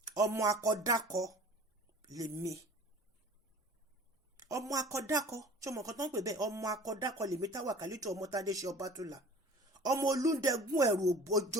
Ọmọ akọdákọ lèmi. Ọmọ akọdákọ, ṣé ọmọ kan tó ń pè bẹ́ẹ̀? Ọmọ akọdákọ lèmi táwà kálítù ọmọ tàdé ṣe Bátúlà. Ọmọ olúndẹ̀gún ẹ̀rù òbójó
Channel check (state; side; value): normal; both; correlation 0.44